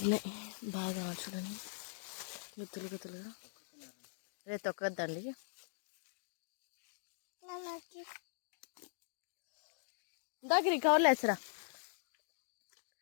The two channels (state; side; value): silent; right; digital silence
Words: బాగా చూడండి, గుత్తులుగా. రే తొక్కద్దండి. దగ్గర కవర్లు వేసరా.